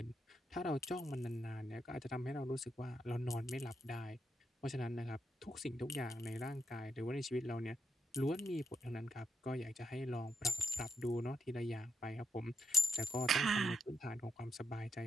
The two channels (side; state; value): both; normal; correlation 0.82